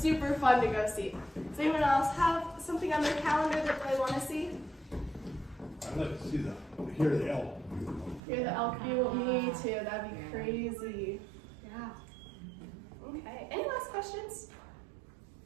fun to go see. Does anyone else have something on their calendar that they want to see? I'd like to see hear the elk. Hear the elk view? Me too. That'd be crazy. Yeah. Okay. Any last questions?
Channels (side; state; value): left; drops out; at 8.2 s